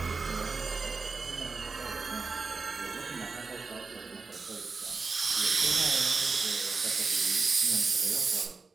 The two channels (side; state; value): left; quieter; 4.3 dB